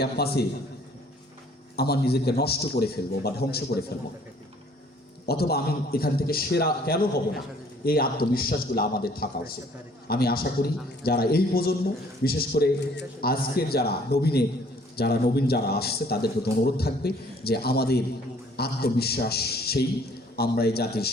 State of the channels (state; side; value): normal; both; correlation 0.58